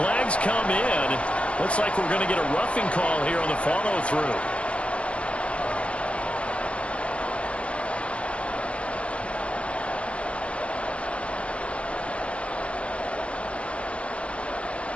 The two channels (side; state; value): right; late; 0.061 ms